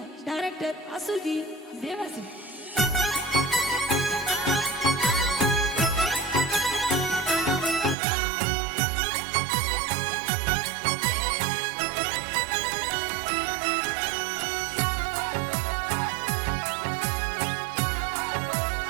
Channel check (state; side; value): drops out; left; at 8.0 s